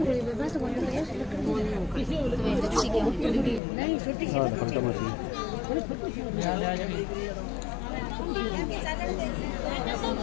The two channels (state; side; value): drops out; right; at 3.6 s